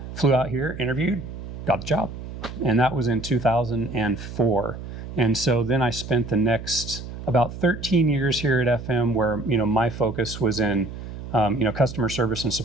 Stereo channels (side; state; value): right; noise; hum, 10 dB below the sound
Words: flew out here, interviewed, got the job. And that was in 2004. And so then I spent the next about 13 years here at FM where, my focus was in, customer service and